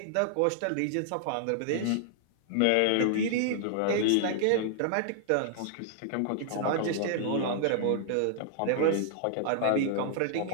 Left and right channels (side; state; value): both; different; correlation -0.01